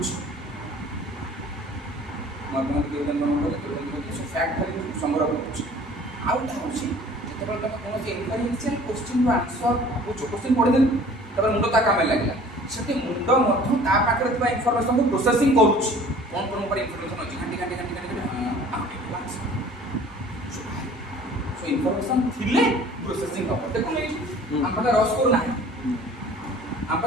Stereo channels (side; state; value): both; normal; correlation 0.49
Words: ম্যাথমেটিক্যাল ইকুয়েশন বনাবো সো ফ্যাক্ট খালি সংগ্রহ করছি আউটা হচ্ছে যেତେବେଳେ তুমি কোন ইনফারেন্সিয়াল কোশ্চেন র আনসার ভাবুছো কোশ্চেন পড়ে দেন তারপর মুন্ড তা কামে লাগিলা সেটি মুন্ড মধ্য তা পাখরে থিবা ইনফরমেশন কো প্রসেসিং করুছি কোন কোন উপর ইনফরমেশন আছে ঘাঁটি সো ইনফরমেশন থিলে প্রসেসিং হবে দেখুন এই আমরা রস স্কোর নাই